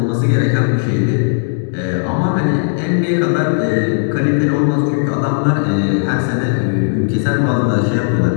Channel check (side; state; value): right; silent; digital silence